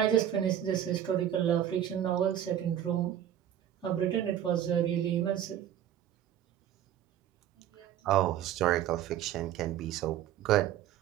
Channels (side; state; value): left; quieter; 10.7 dB